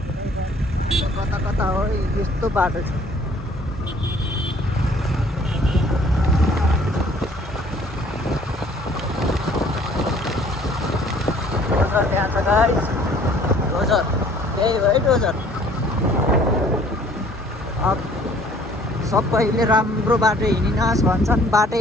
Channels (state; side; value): normal; both; correlation 0.56